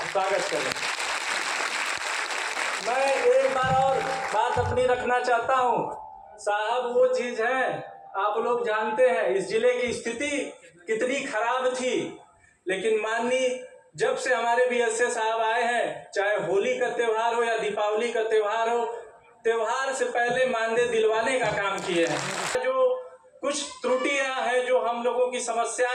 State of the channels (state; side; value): identical; both; correlation 1.00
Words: स्वागत करें। मैं एक बार और बात अपनी रखना चाहता हूँ साहब, वो चीज है आप लोग जानते हैं इस जिले की स्थिति कितनी खराब थी, लेकिन माननीय जब से हमारे BSA साहब आए हैं, चाहे होली का त्यौहार हो या दीपावली का त्यौहार हो, त्यौहार से पहले मानदेय दिलवाने का काम किए हैं। जो कुछ त्रुटियां हैं, जो हम लोगों की